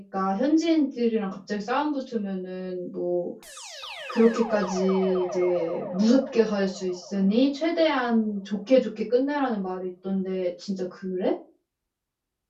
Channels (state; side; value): identical; both; correlation 1.00